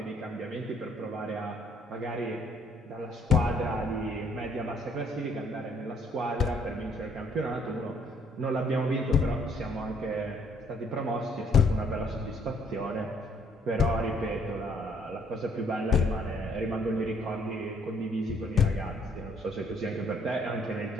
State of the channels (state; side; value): normal; both; correlation 0.65